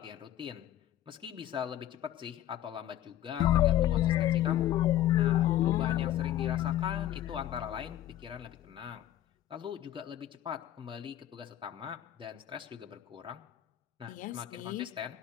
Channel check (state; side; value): quieter; right; 12.6 dB